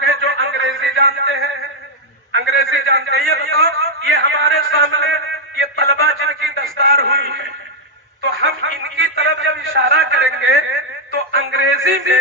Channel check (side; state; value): both; normal; correlation -0.02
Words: ہیں جو انگریزی جانتے ہیں، انگریزی جانتے ہیں، یہ بتاؤ یہ ہمارے سامنے یہ طلبہ جن کی دستار ہوئی ہے تو ہم ان کی طرف جب اشارہ کریں گے تو انگریزی